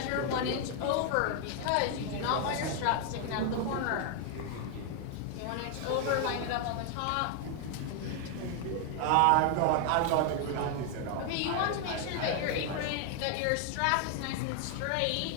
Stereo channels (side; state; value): both; different; correlation 0.00